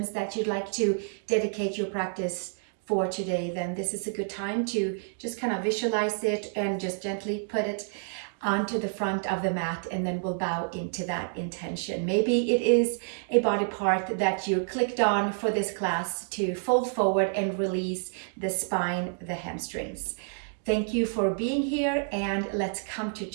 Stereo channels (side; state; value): left; silent; digital silence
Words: that you'd like to dedicate your practice for today, then this is a good time to just kind of visualize it and just gently put it onto the front of the mat, and then we'll bow into that intention. Maybe it is a body part that you clicked on for this class to fold forward and release the spine, the hamstrings. Thank you for being here, and let's come to